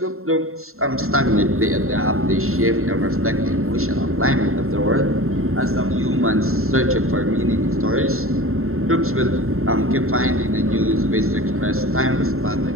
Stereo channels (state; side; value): late; left; 0.62 ms